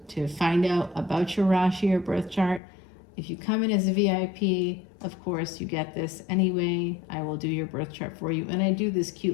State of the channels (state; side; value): drops out; right; at 2.6 s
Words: to find out about your Rashi or birth chart. If you come in as a VIP, of course, you get this anyway. I will do your birth chart for you, and I do this